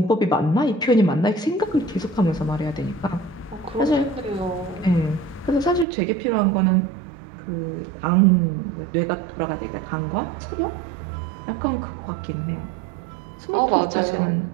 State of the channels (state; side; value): drops out; left; at 5.9 s